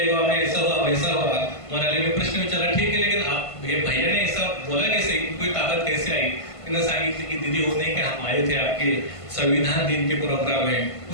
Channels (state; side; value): late; right; 1.5 ms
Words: गाव में ऐसा हुआ वैसा हुआ. मोनालीने प्रश्न विचारला, ठीक है लेकिन आप ये भैया ने ऐसा बोला कैसे, कोई ताकत कैसे आई. तिने सांगितलं की दीदी वो नहीं कि हम आए थे आपके संविधान दिन के प्रोग्राम में,